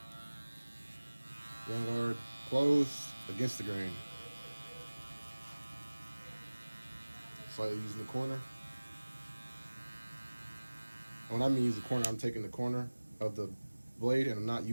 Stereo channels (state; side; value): inverted; both; correlation -1.00